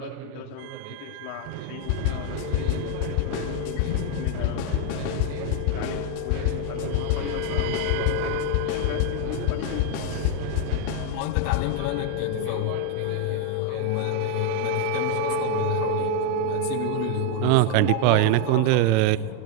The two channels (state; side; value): different; both; correlation 0.00